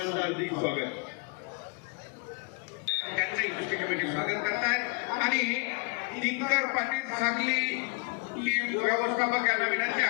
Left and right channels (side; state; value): right; quieter; 32.6 dB